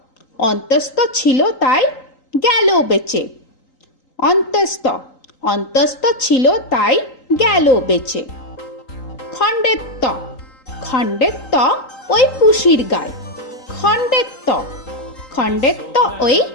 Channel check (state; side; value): late; right; 3.8 ms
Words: অন্তস্থ ছিল তাই গেল বেঁচে। অন্তস্থ অন্তস্থ ছিল তাই গেল বেঁচে। খণ্ডেত্ব খণ্ডেত্ব ওই পুষির গায়। খণ্ডেত্ব খণ্ডেত্ব ওই